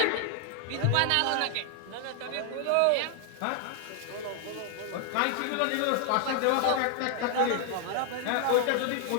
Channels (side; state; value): both; different; correlation 0.00